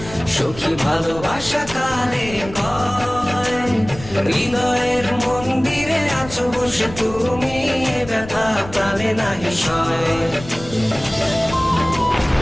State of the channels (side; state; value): left; noise; rumble, 15 dB below the sound